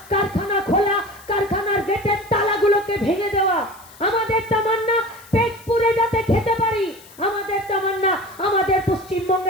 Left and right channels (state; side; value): noise; left; hiss, 22 dB below the sound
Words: কারখানা খোলা, কারখানার গেটের তালাগুলোকে ভেঙে দেওয়া। আমাদের তামান্না পেট পুরে যাতে খেতে পারি। আমাদের তামান্না আমাদের